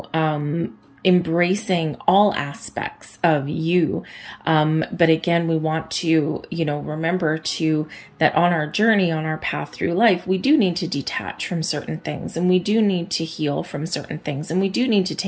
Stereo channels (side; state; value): both; identical; correlation 1.00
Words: embracing all aspects of you. But again, we want to, you know, remember that on our journey, on our path through life, we do need to detach from certain things, and we do need to heal from certain things, and we do need to